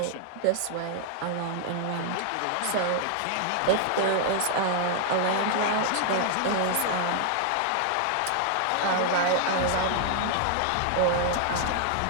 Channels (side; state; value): both; different; correlation 0.00